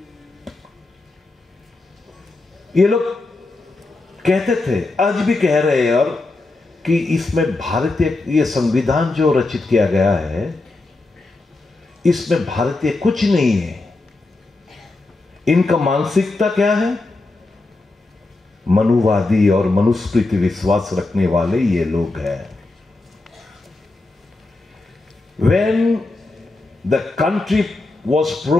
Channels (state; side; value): quieter; right; 3.2 dB